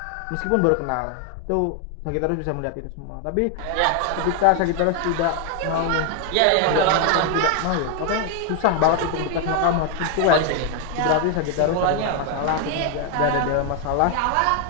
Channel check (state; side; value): different; both; correlation 0.01